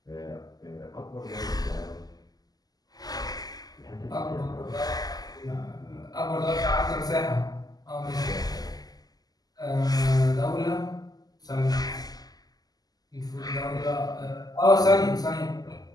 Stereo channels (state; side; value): late; right; 0.18 ms